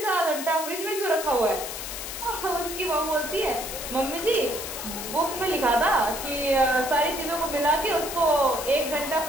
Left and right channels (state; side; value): noise; left; hiss, 7 dB below the sound